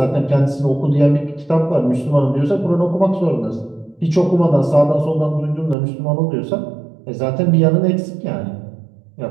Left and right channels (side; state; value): left; drops out; at 5.8 s